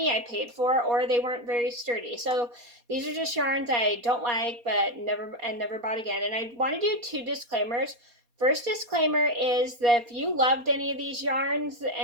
I paid for, or they weren't very sturdy. So these are just yarns I don't like but never bought again. And I want to do 2 disclaimers. First disclaimer is that if you loved any of these yarns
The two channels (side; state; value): left; late; 4.2 ms